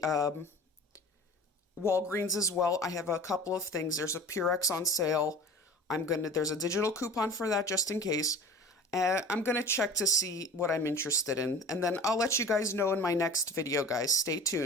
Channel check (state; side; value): normal; both; correlation 0.39